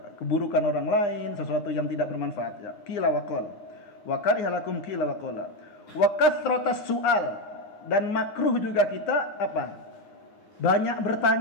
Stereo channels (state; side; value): late; right; 9.7 ms